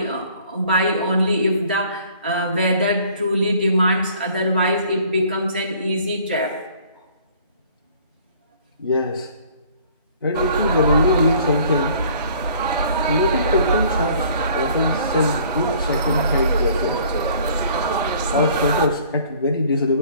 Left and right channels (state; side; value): inverted; both; correlation -0.55